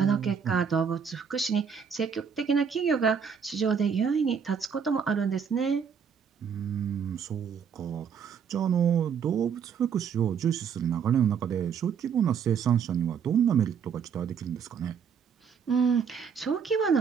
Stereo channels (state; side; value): quieter; left; 6.9 dB